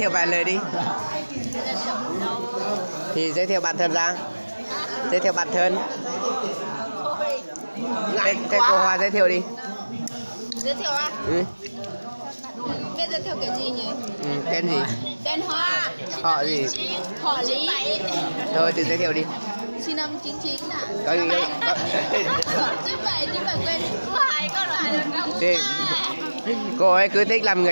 vài lời đi. Thì giới thiệu bản thân ra. Giới thiệu bản thân. Thế cô Hoa giới thiệu đi. Giới thiệu à? Ừ. Biết giới thiệu cái gì nhỉ? Ừ, tên gì? Tên Hoa. Họ gì? Họ Lý. Thôi thì giới thiệu đi. Sinh năm 99 ạ. Có gì có... Chứ phải quên cô hai con là thì, cô ấy cứ thích làm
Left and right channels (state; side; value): inverted; both; correlation -1.00